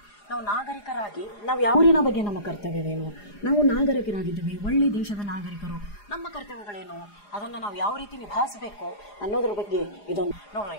ನಾವು ನಾಗರಿಕರಾಗಿ ನಾವು ಯಾವ ಊರಿನ ಬಗ್ಗೆ ನಮ್ಮ ಕರ್ತವ್ಯವೇನು, ನಾವು ನಾಗರಿಕರಾಗಿದ್ದೀವಿ, ಒಳ್ಳೆ ದೇಶದ ನಾಗರಿಕರು, ನಮ್ಮ ಕರ್ತವ್ಯಗಳೇನು, ಅದನ್ನು ನಾವು ಯಾವ ರೀತಿ ನಿಭಾಯಿಸಬೇಕು ಅನ್ನೋದ್ರ ಬಗ್ಗೆ ಇದೊಂದು ನೋಡ್ರಿ.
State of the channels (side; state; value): right; late; 4.9 ms